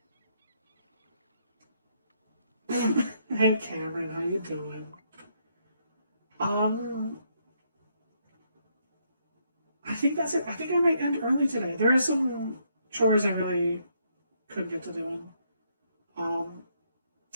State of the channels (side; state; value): both; inverted; correlation -0.74